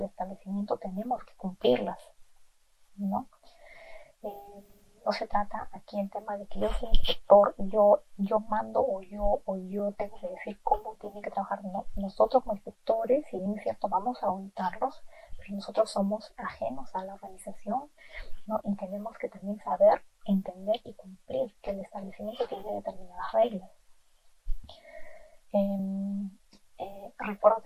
establecimiento tenemos que cumplirlas, ¿no? No se trata aquí el tema de que yo soy inspector y yo mando o yo tengo que decir cómo tienen que trabajar. No, nosotros como inspectores, si bien es cierto, vamos a auditarlos, pero nosotros somos ajenos a la organización, ¿no? Y tenemos que también saber, entender y cumplir que el establecimiento tiene determinadas reglas. Recuerdo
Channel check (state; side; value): identical; both; correlation 1.00